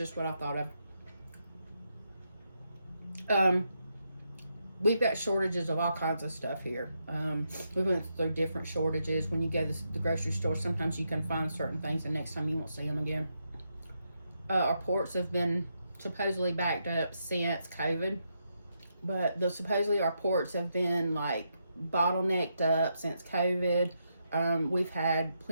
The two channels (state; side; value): inverted; both; correlation -0.82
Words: what I thought of. We've got shortages of all kinds of stuff here. We went through different shortages. When you go to the grocery store, sometimes you can find certain things, and next time you won't see them again. Our ports have been supposedly backed up since COVID, but supposedly our ports have been like bottlenecked up since COVID. We've had